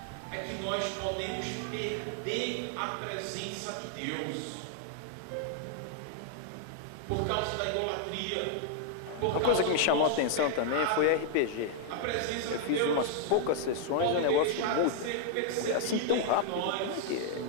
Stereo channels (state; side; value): different; both; correlation -0.01